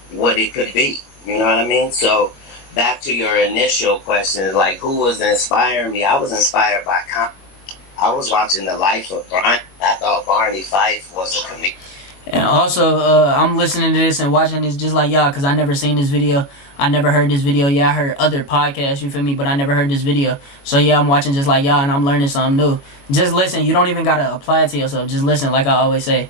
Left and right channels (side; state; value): right; late; 22 ms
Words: what it could be. You know what I mean? So back to your initial question, like who was inspiring me? I was inspired by I was watching the life of Barney. I thought Barney Fife was a comedian. And also, I'm listening to this and watching this just like y'all, because I never seen this video. I never heard this video. Yeah, I heard other podcasts, you feel me? But I never heard this video. So yeah, I'm watching just like y'all, and I'm learning something new. Just listen. You don't even got to apply it to yourself. Just listen, like I always say.